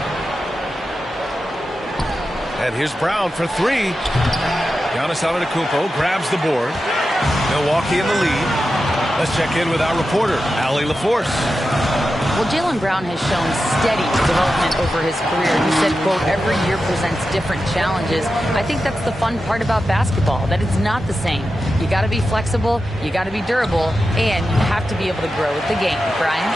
And here's Brown for 3. Giannis Antetokounmpo grabs the board. Milwaukee in the lead. Let's check in with our reporter, Allie LaForce. Well, Jaylen Brown has shown steady development over his career. He said, quote, every year presents different challenges. I think that's the fun part about basketball, that it's not the same. You got to be flexible, you got to be durable, and you have to be able to grow with the game. Brian?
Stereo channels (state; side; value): normal; both; correlation 0.91